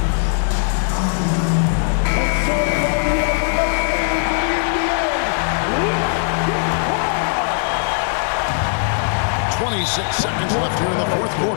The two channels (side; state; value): right; silent; digital silence